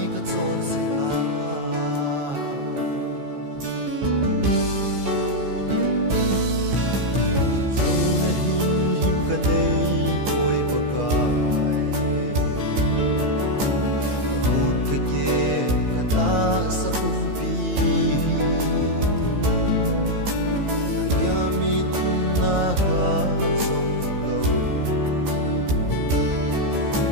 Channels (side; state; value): left; late; 15 ms